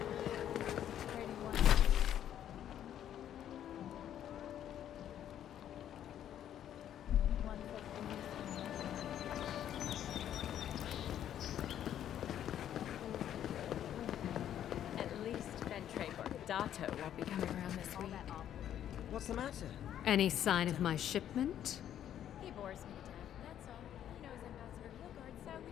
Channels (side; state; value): right; quieter; 10.6 dB